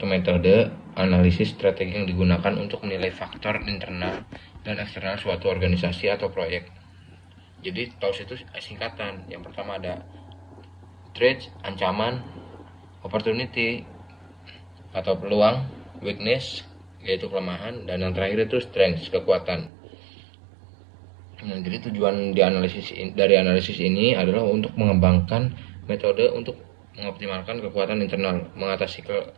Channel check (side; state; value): left; drops out; at 19.7 s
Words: metode analisis strategi yang digunakan untuk menilai faktor internal dan eksternal suatu organisasi atau proyek. Jadi TOS itu singkatan. Yang pertama ada threat, ancaman, opportunity atau peluang, weakness yaitu kelemahan, dan yang terakhir itu strength, kekuatan. Nah, jadi tujuan dari analisis ini adalah untuk mengembangkan metode untuk mengoptimalkan kekuatan internal, mengatasi